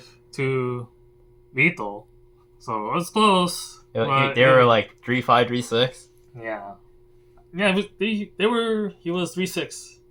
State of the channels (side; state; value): both; identical; correlation 1.00